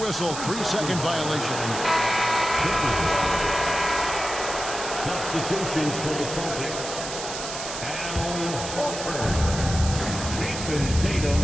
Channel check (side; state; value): right; noise; hiss, 7 dB below the sound